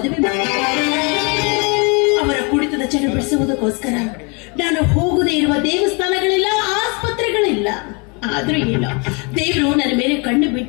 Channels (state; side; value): quieter; right; 31.7 dB